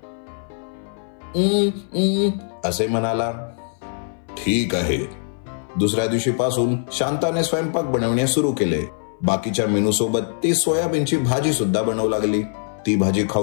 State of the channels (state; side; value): silent; right; 61 dB below the other